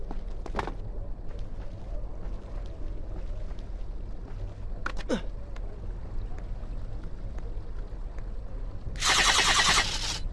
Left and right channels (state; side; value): identical; both; correlation 1.00